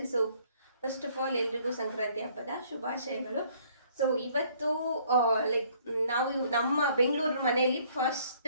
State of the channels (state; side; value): inverted; both; correlation -0.62